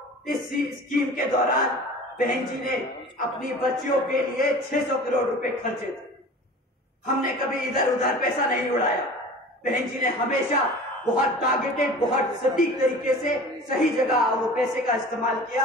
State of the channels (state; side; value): normal; both; correlation 0.40